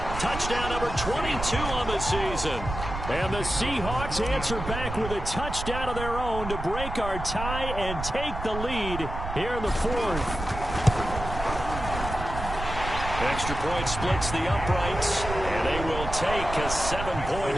touchdown number 22 on the season. And the Seahawks answer back with a touchdown of their own to break our tie and take the lead here in the 4th. Extra point splits the uprights, and they will take a 7-point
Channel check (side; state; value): right; noise; rumble, 7 dB below the sound